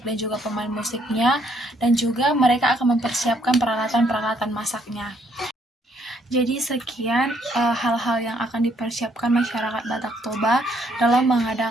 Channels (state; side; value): normal; both; correlation 0.69